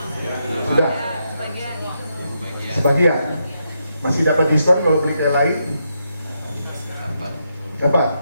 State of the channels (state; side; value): inverted; both; correlation -0.81